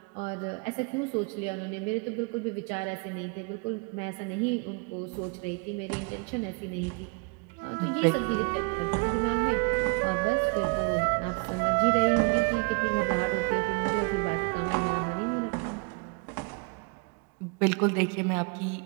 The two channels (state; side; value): quieter; left; 32.5 dB